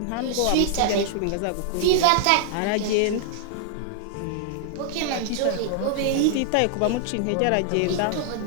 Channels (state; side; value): different; both; correlation -0.01